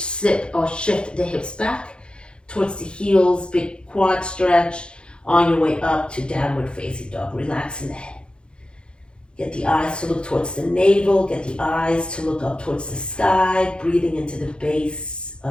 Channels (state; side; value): late; right; 0.054 ms